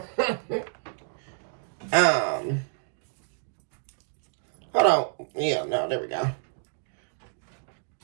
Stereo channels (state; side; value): silent; left; 59 dB below the other